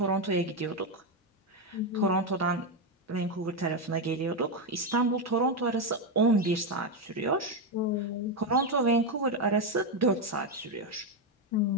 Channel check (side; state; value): both; normal; correlation 0.06